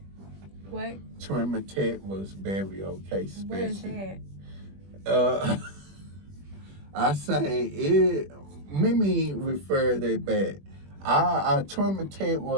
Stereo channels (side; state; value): left; late; 21 ms